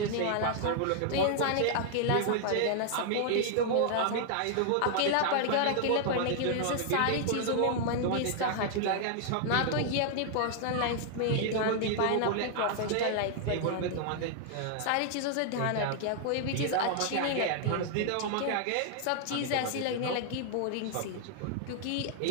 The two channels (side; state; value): both; different; correlation 0.00